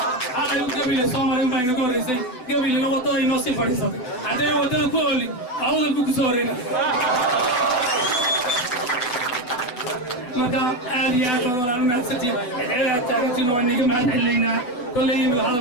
xalay u gabile soo maray unbaa inaga horreysay gabilina waddada inoo sii fadhiisatay haddayna waddada ku oolin awdal buu ku soo horeyna marka aad iyo aad baan walaal mahadsantiin cidceedaad taagantiin waa niga mahad celinaynaa kolley imika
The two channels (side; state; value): right; late; 7.9 ms